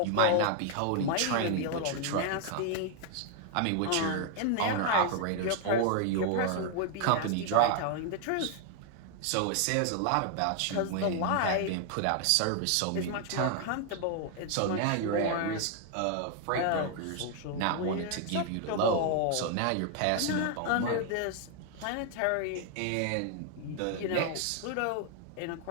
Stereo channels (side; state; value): both; different; correlation 0.00